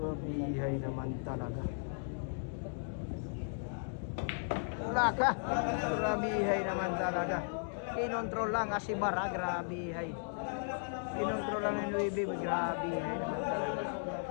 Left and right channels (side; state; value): right; silent; digital silence